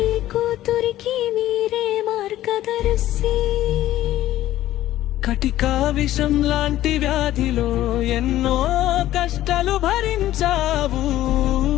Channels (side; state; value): right; quieter; 14.1 dB